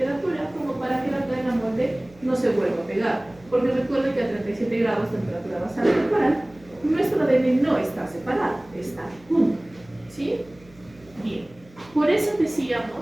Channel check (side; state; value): right; noise; hum, 26 dB below the sound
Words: como para que la cadena molde no se vuelva a pegar. Porque recuerden que a 37 grados temperatura basal corporal, nuestro ADN no está separado, está junto. ¿Sí? Bien. Por eso